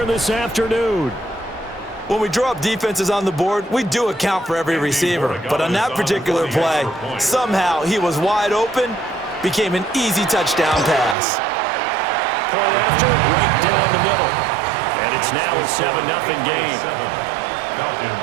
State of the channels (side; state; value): left; drops out; at 11.2 s